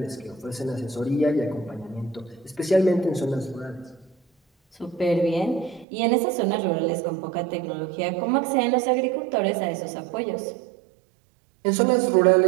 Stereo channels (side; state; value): left; drops out; at 5.9 s